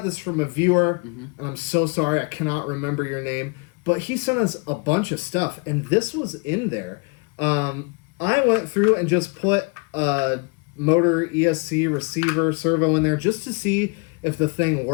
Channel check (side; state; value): right; quieter; 32.8 dB